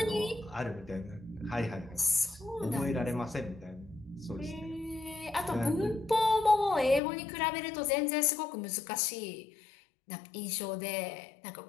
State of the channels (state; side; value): drops out; right; at 7.0 s